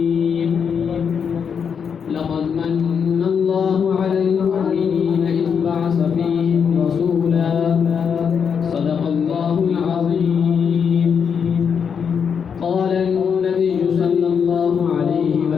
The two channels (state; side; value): quieter; right; 6.9 dB